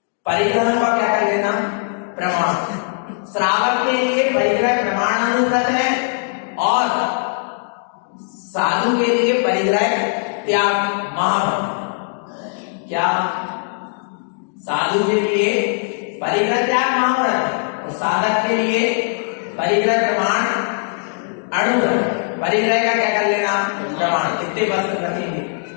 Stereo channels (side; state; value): right; silent; 66 dB below the other